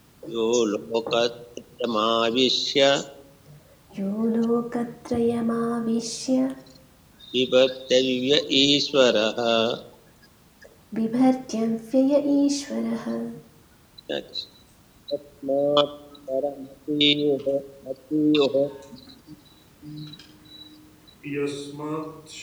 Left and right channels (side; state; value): both; identical; correlation 1.00